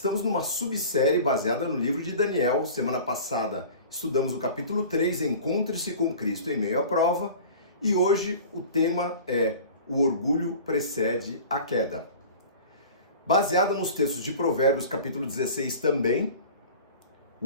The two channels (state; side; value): inverted; both; correlation -0.40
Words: numa subsérie baseada no livro de Daniel. Semana passada estudamos o capítulo 3, Encontre-se com Cristo em meio à prova, e hoje o tema é O orgulho precede a queda. Baseado nos textos de Provérbios, capítulo 16 também,